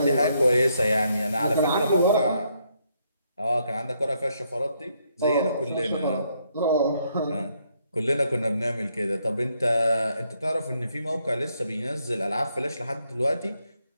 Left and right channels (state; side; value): inverted; both; correlation -0.74